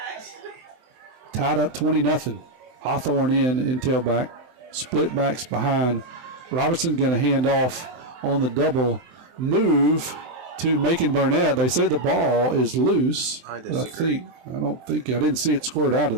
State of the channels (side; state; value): left; late; 23 ms